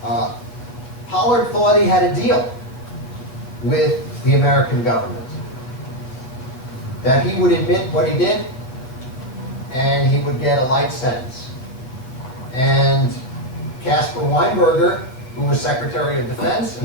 Pollard thought he had a deal with the American government, that he would admit what he did and he would get a light sentence. And Caspar Weinberger, who was Secretary of Defense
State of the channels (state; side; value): late; right; 8.0 ms